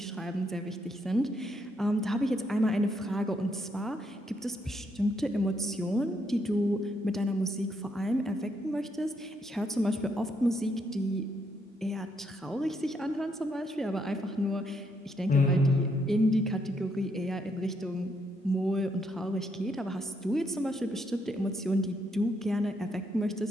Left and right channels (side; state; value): both; normal; correlation 0.75